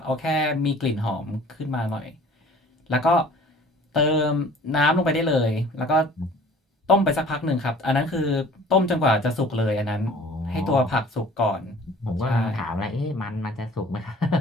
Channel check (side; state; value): both; normal; correlation 0.49